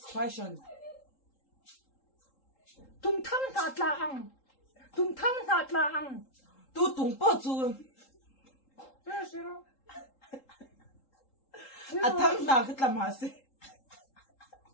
question tung thang na tla ang tu tung po chu zero a thang na ka tlam ha se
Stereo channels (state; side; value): late; right; 3.8 ms